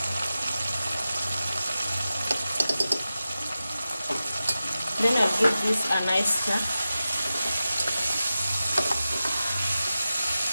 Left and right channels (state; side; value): inverted; both; correlation -0.93